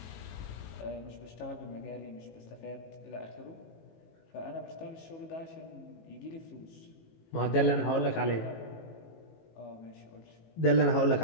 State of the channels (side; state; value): right; late; 18 ms